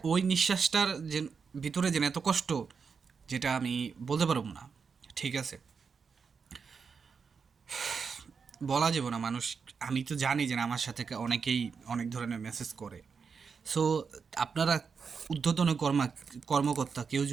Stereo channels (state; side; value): quieter; left; 5.7 dB